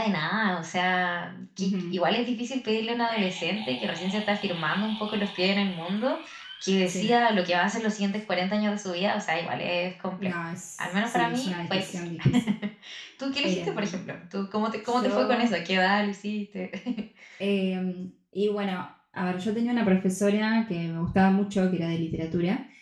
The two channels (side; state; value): both; identical; correlation 1.00